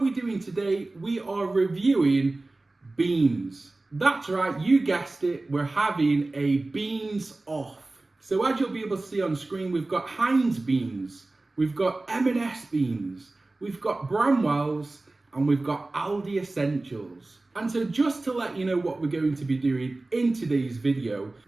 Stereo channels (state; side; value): quieter; left; 3.0 dB